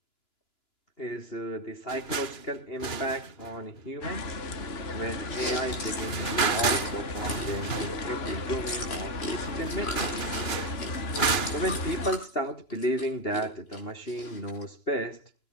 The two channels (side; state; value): right; late; 2.9 ms